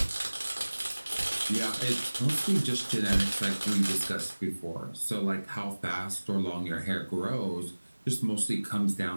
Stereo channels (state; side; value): inverted; both; correlation -1.00